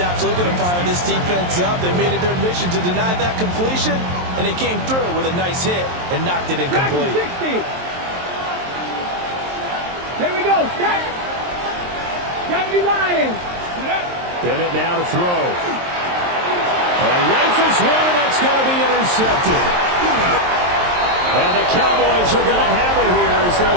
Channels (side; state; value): left; late; 23 ms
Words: absolutely going to fire this defense up. They made it their mission to deny that completion, and they came through with a nice hit and knocked it incomplete. 60. Here we go. Set. 70 Lions. Bennett now to throw. Rifles one, and that's going to be intercepted. And the Cowboys are going to have it here as they'll